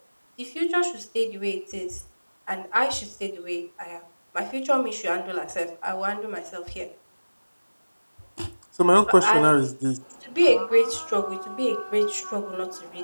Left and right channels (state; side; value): inverted; both; correlation -1.00